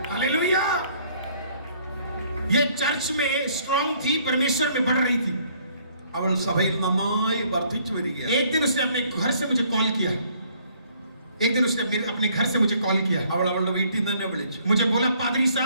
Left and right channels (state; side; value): inverted; both; correlation -0.63